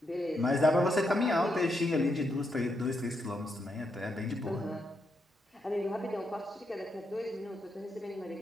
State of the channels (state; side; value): normal; both; correlation 0.81